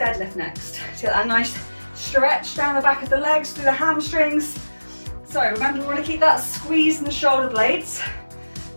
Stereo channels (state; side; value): inverted; both; correlation -1.00